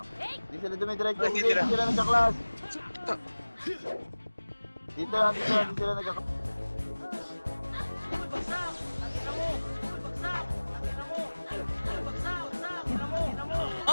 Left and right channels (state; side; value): inverted; both; correlation -1.00